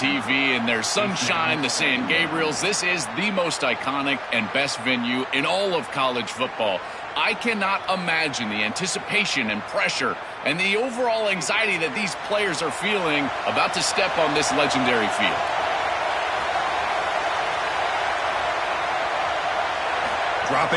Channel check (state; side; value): identical; both; correlation 1.00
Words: and there's sunshine, the San Gabriels. This is the most iconic and best venue in all of college football. I cannot imagine the anticipation and pressure and the overall anxiety that these players are feeling about to step on this legendary field.